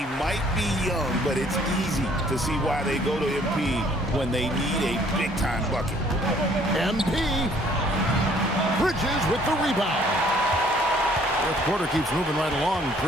might be young, but it's easy to see why they go to MP when they need a big-time bucket. MP. Bridges with the rebound. Fourth quarter keeps moving right along.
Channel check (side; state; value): both; normal; correlation 0.60